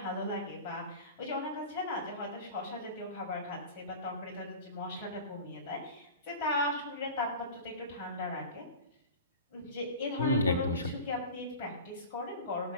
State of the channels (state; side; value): inverted; both; correlation -0.34